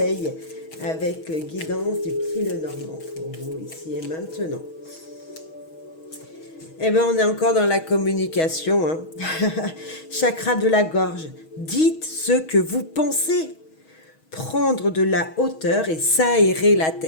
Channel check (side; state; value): right; late; 6.3 ms